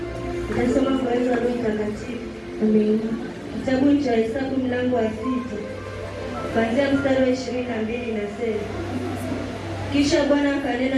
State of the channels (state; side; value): identical; both; correlation 1.00